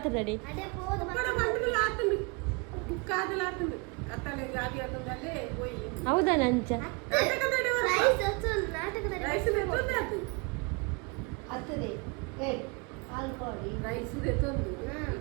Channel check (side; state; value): left; quieter; 30.5 dB